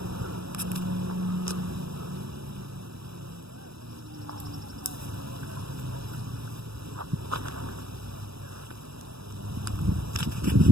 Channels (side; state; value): left; late; 0.77 ms